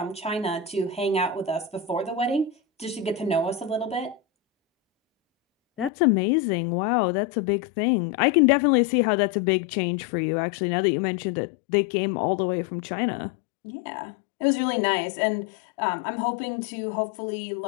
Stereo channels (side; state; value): right; drops out; at 5.9 s